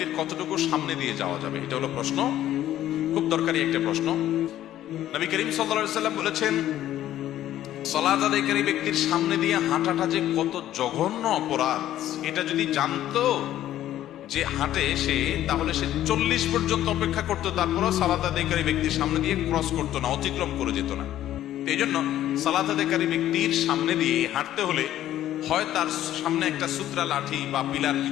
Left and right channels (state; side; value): quieter; right; 12.7 dB